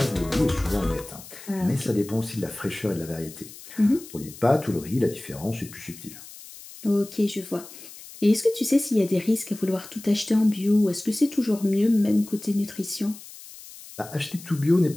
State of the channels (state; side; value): noise; left; hiss, 17 dB below the sound